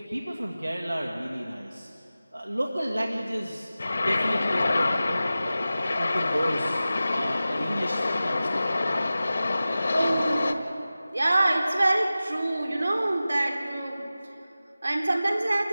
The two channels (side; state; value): both; inverted; correlation -0.95